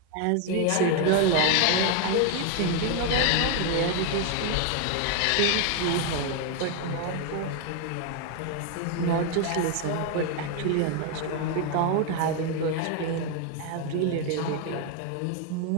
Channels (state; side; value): different; both; correlation 0.01